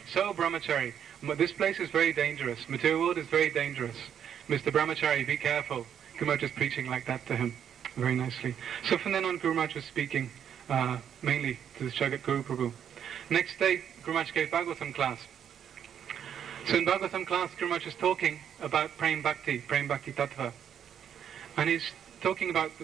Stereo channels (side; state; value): left; quieter; 8.8 dB